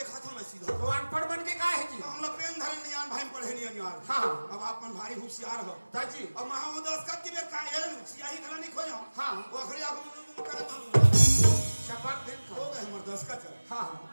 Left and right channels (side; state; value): both; inverted; correlation -1.00